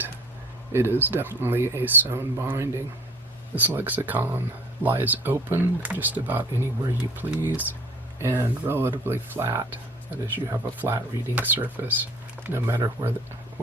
it is definitely a sewn binding. This lexicon lies open just about anywhere you please, and relatively flat. That is, you have a flat reading surface no matter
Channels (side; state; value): both; normal; correlation 0.50